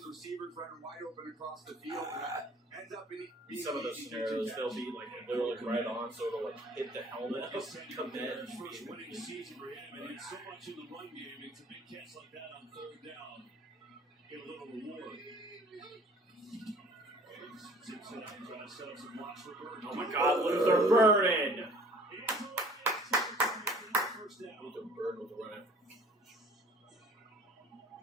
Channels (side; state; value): both; normal; correlation 0.52